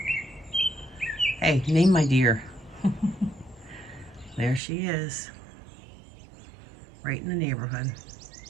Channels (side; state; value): left; drops out; at 4.6 s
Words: Hey, name my deer. There she is. Right in the neighborhood.